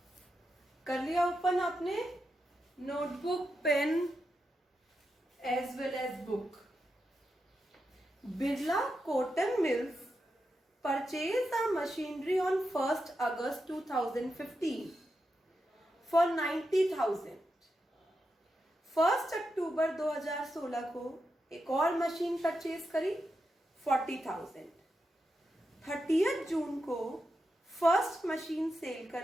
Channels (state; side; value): normal; both; correlation 0.87